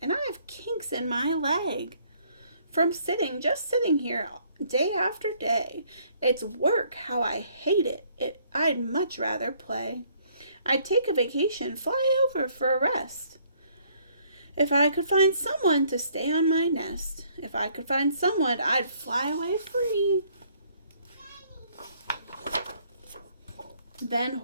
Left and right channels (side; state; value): both; inverted; correlation -0.64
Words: and I have kinks in my leg. From just sitting here day after day. It's work, how I hate it. I'd much rather play. I'd take a vacation, fly over for a rest. If I could find someone to stay on my nest, if I could find someone, I'd fly away free. Then